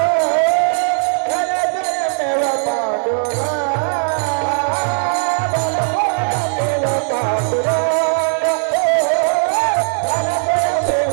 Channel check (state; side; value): silent; left; 68 dB below the other